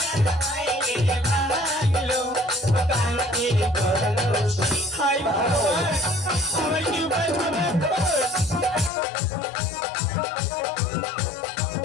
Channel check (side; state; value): right; drops out; at 8.9 s